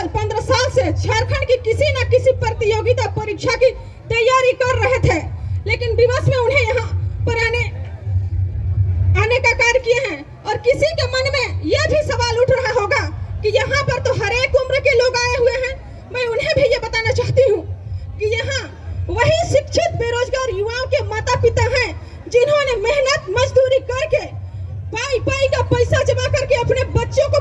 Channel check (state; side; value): identical; both; correlation 1.00